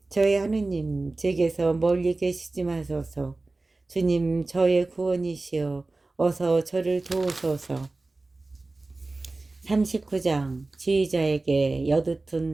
저의 하느님, 제게서 멀리 계시지 마소서. 주님, 저의 구원이시여 어서 저를 도우소서. 39장 지휘자에게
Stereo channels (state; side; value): quieter; left; 3.2 dB